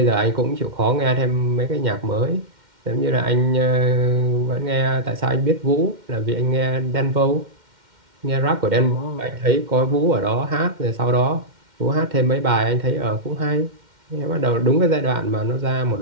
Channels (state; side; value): late; left; 2.1 ms